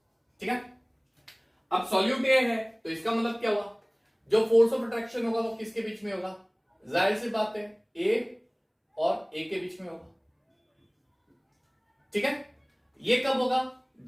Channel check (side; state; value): both; identical; correlation 1.00